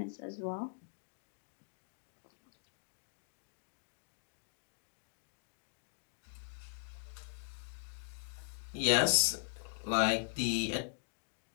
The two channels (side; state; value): right; silent; digital silence